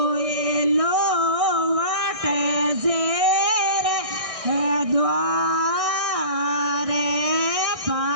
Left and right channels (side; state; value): left; late; 1.6 ms